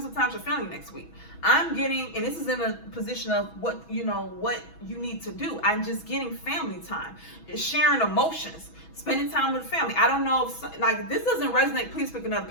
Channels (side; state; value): right; late; 6.1 ms